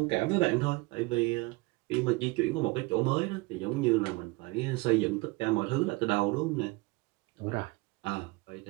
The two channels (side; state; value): left; quieter; 23.8 dB